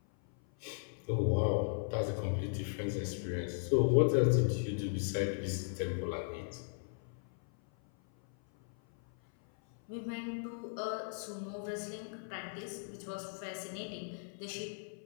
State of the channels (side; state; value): right; silent; 53 dB below the other